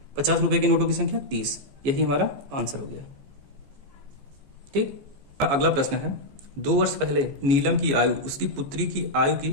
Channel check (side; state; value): left; late; 14 ms